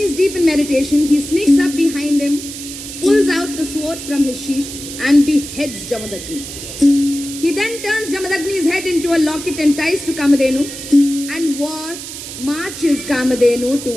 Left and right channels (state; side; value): noise; right; hiss, 10 dB below the sound